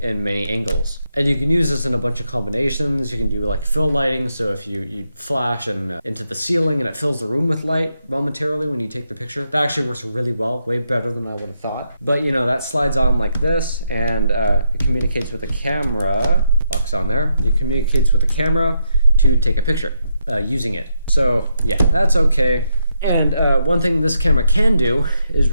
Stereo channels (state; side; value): inverted; both; correlation -0.80